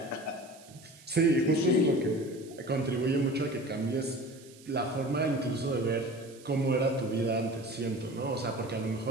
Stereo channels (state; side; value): noise; right; hiss, 23 dB below the sound